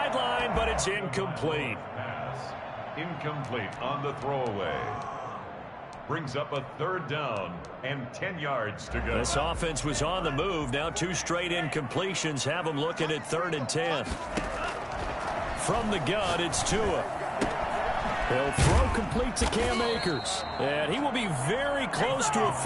but it's incomplete. Incomplete on the throwaway. Brings up a 3rd down and 10 yards to go. This offense was on the move. Now 2 straight incompletions have them looking at 3rd and 10. From the gun, it's Tua. He'll throw complete to Cam Akers. And he will be very close to a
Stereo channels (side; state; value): both; identical; correlation 1.00